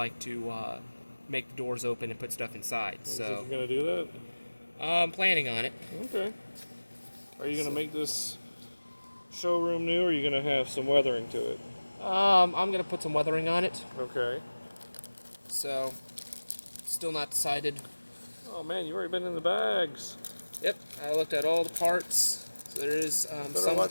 to make the doors open and put stuff inside. So you're gonna do that? I'm planning on it. Okay. Are you gonna make this showroom new, or are you gonna have some weathering to it? I'm gonna put some weathering on it. Okay. So, still not decided. Oh man, you've already been in the bags. Yep, I looked at all the parts. So there is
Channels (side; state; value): both; inverted; correlation -1.00